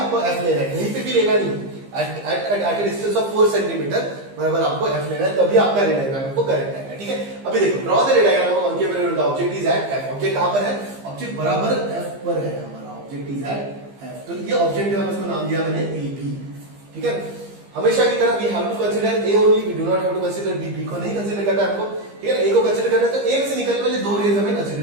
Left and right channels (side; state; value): left; late; 15 ms